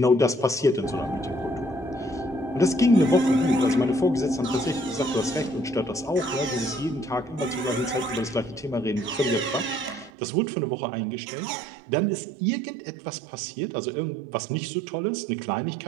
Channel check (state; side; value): drops out; left; at 10.1 s